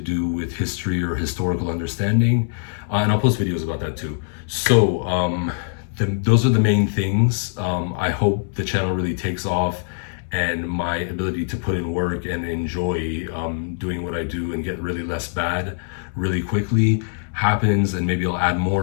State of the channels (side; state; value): right; silent; digital silence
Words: with history or historical understanding. And I'll post videos about that too. So those are the main things. I hope the channel really takes off, and my ability to put in work and enjoy doing what I do and get really less bad really quickly happens, and maybe I'll add more.